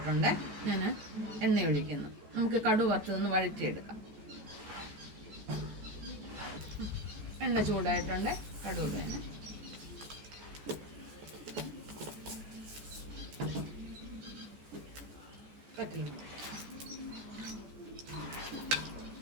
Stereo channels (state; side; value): late; left; 14 ms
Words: ഞാൻ എണ്ണ ഒഴിക്കുന്നു. നമുക്ക് കടുക് വറുത്തതൊന്ന് വഴറ്റിയെടുക്കാം. എണ്ണ ചൂടായിട്ടുണ്ട്. കടുക് വേണം. പറ്റില്ല.